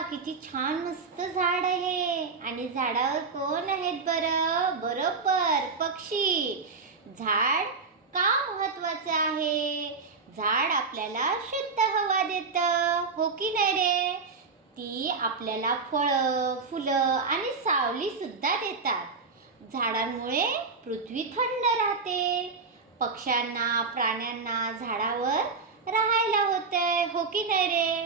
किती छान मस्त झाड आहे. आणि झाडावर कोण आहेत बरं? बरोबर, पक्षी. झाड का महत्वाचं आहे? झाड आपल्याला शुद्ध हवा देतं, हो की नाही रे? ती आपल्याला फळं, फुलं आणि सावली सुद्धा देतात. झाडांमुळे पृथ्वी थंड राहते. पक्ष्यांना, प्राण्यांना झाडावर राहायला होतंय, हो की नाही रे?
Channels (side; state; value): left; quieter; 4.6 dB